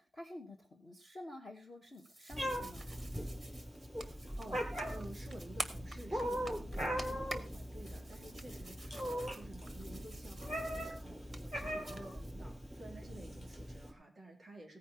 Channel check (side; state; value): both; normal; correlation 0.90